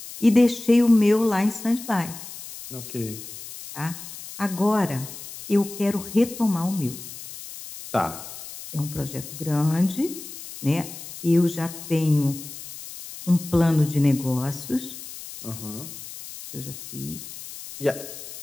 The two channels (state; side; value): noise; left; hiss, 13 dB below the sound